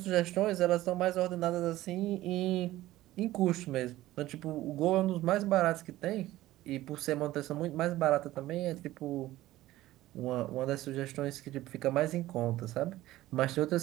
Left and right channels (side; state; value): left; quieter; 16.0 dB